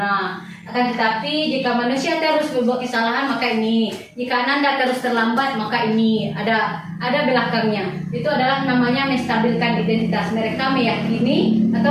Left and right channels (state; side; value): identical; both; correlation 1.00